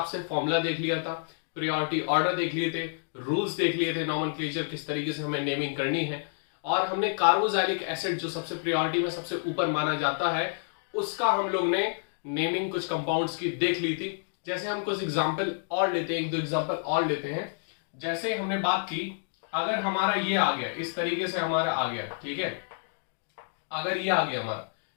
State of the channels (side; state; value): right; silent; digital silence